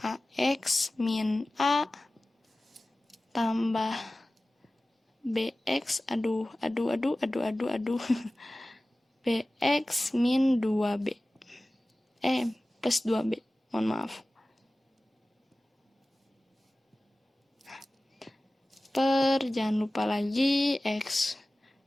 ax min a tambah bx, bx min 2b. Plus 2b, mohon maaf. Per, jangan lupa lagi, x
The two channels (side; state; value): both; normal; correlation 0.97